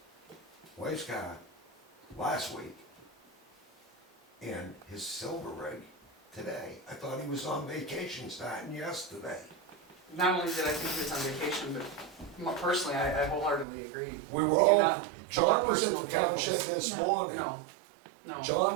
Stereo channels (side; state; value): left; drops out; at 13.7 s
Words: wife's car last week, and his silver rig today. I thought he was on vacation starting yesterday. Not only did I think he was on vacation, but personally, I wholeheartedly agree. We were You're all, not- John was at personal the town shed vehicles. this morning. No, no.